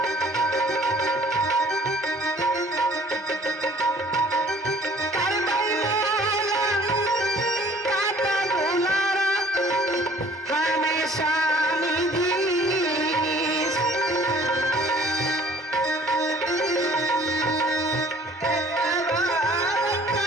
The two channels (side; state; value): both; normal; correlation 0.54